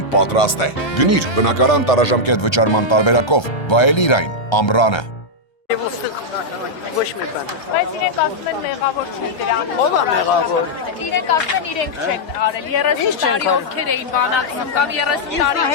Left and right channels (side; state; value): right; late; 1.3 ms